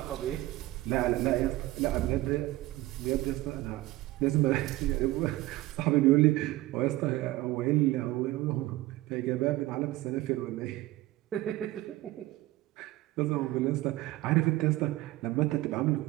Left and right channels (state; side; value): quieter; left; 17.5 dB